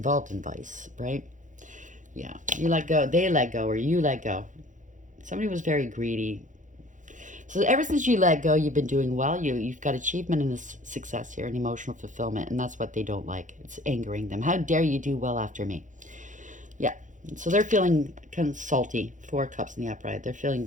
in vice, right? Yeah, you let go, they let go, or you let go. Somebody was very greedy. So ever since you let go, you've been doing well. You've got achievement and success here and emotional fulfillment, and that's what they don't like. It's angering them. How dare you do well after me? Yeah. So they're feeling kind of salty. Four Cups in the upright.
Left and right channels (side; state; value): left; late; 0.37 ms